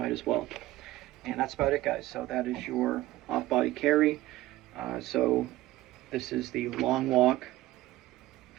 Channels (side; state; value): left; quieter; 16.7 dB